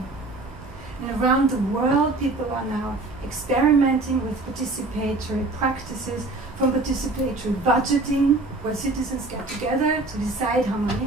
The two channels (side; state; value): left; quieter; 3.1 dB